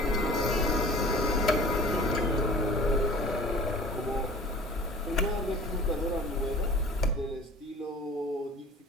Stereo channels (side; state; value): both; normal; correlation 0.44